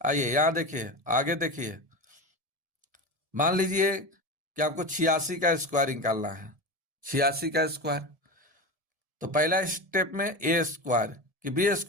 यहां देखिए, आगे देखिए, मान लीजिए कि आपको 86 का स्क्वायर निकालना है, 86 का स्क्वायर, तो पहला स्टेप में ए स्क्वायर कि बी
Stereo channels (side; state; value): left; late; 1.7 ms